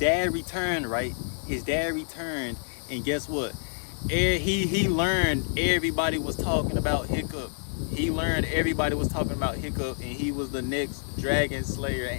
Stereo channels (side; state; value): right; silent; digital silence